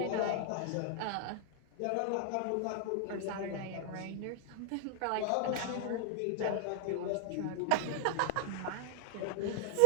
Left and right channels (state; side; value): different; both; correlation 0.00